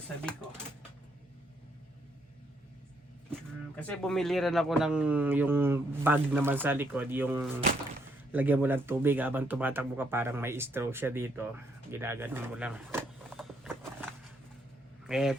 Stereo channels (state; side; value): normal; both; correlation 0.73